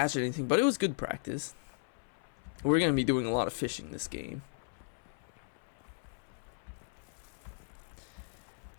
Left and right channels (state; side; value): silent; right; 54 dB below the other